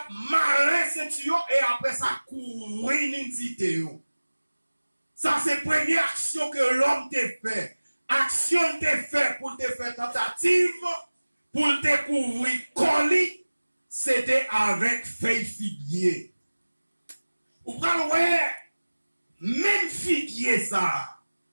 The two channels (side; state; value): both; inverted; correlation -1.00